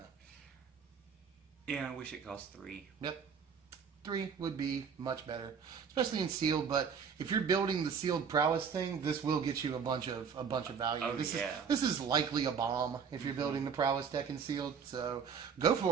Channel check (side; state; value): left; quieter; 6.6 dB